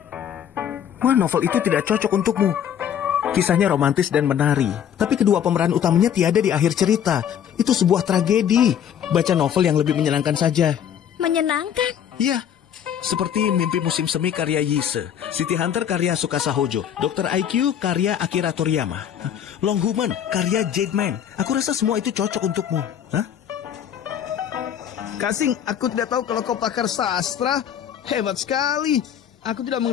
Wah, novel itu tidak cocok untukmu. Kisahnya romantis dan menari, tapi kedua pemeran utamanya tiada di akhir cerita. Itu sebuah tragedi. Baca novel yang lebih menyenangkan saja. Menyenangkan? Iya, seperti Mimpi Musim Semi karya Yise, City Hunter karya Tsukasa Hojo, Dr. IQ karya Akira Toriyama, Long Human karya Jade Man. Aku rasa semua itu cocok untukmu. Hah? Kasing, aku tidak tahu kalau kau pakar sastra. Hebat sekali. Aku tidak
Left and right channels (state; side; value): quieter; right; 9.2 dB